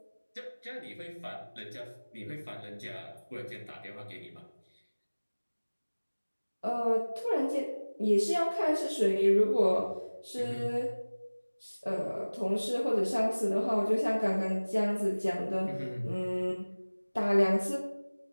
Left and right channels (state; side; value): inverted; both; correlation -1.00